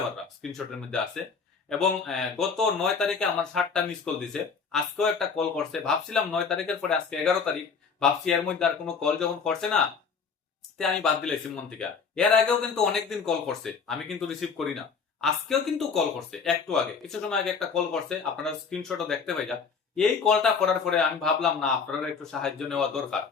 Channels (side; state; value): right; quieter; 5.6 dB